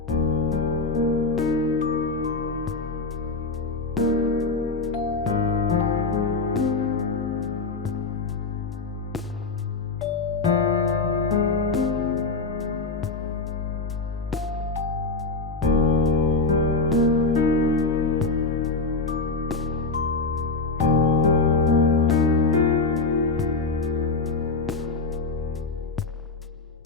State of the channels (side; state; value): right; quieter; 3.9 dB